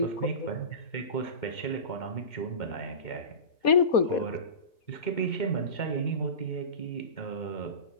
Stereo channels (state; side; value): late; right; 4.2 ms